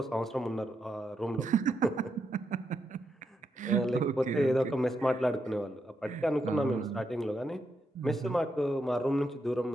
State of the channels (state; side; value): normal; both; correlation 0.82